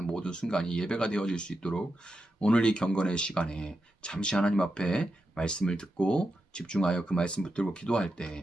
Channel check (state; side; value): normal; both; correlation 0.87